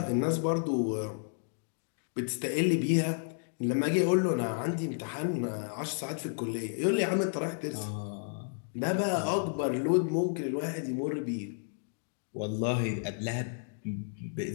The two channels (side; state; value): right; silent; digital silence